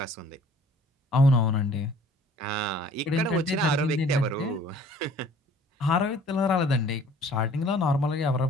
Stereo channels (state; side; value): normal; both; correlation 0.53